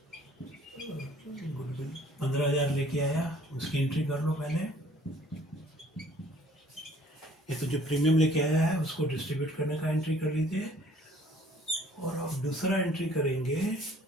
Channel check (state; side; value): normal; both; correlation 0.56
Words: goodwill 15,000 लेके आया, उसकी एंट्री कर लो पहले। ये तो जो प्रीमियम लेके आया है उसको डिस्ट्रीब्यूट करने का एंट्री कर लीजिए। और अब दूसरा एंट्री करेंगे